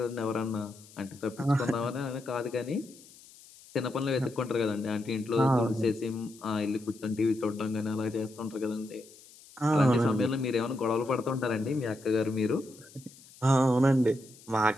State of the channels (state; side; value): noise; left; hiss, 22 dB below the sound